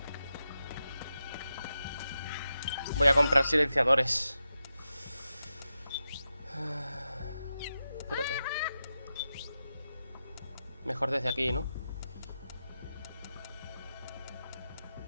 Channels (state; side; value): inverted; both; correlation -0.89